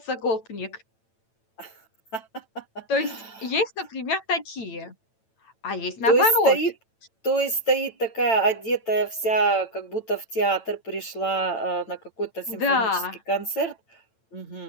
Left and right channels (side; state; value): right; late; 9.0 ms